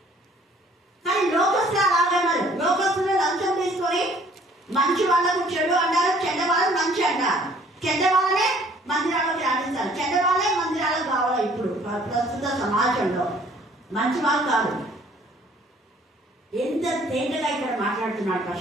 కానీ లోకస్తులు అలాగన్నారు. లోకస్తులు లంచం తీసుకొని మంచి వాళ్ళకు చెడు అంటారు, చెడ్డ వాళ్ళని మంచి అంటారు. చెడ్డ వాళ్ళనే మందిరాలకు రాణిస్తారు, చెడ్డ వాళ్ళే మందిరాలకు కావాలి. ఇప్పుడు ప్రస్తుత సమాజంలో మంచి వాళ్ళు కాదు. ఎంత తేటగా ఇక్కడ మాట్లాడుతున్నాడు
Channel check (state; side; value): normal; both; correlation 0.57